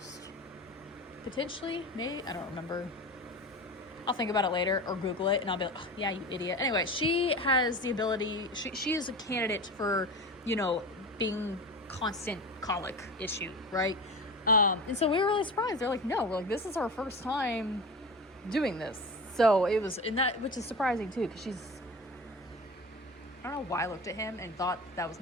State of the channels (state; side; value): normal; both; correlation 0.30